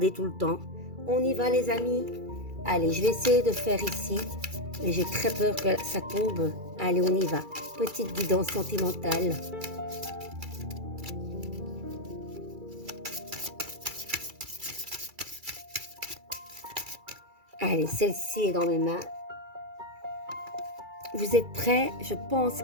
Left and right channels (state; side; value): late; left; 2.3 ms